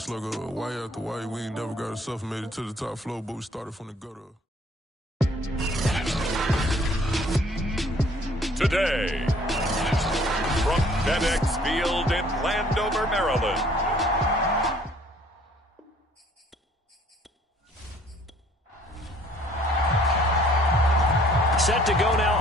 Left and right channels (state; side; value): normal; both; correlation 0.58